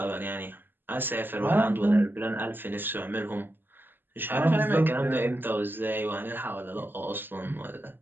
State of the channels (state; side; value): late; left; 0.094 ms